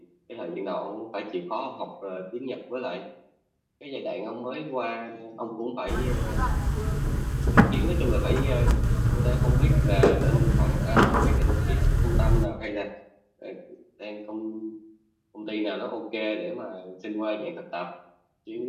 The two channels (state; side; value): identical; both; correlation 1.00